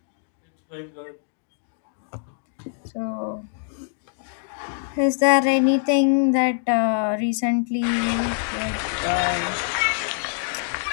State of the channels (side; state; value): right; silent; digital silence